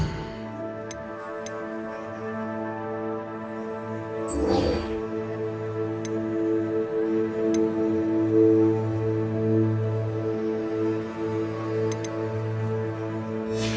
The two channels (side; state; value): both; identical; correlation 1.00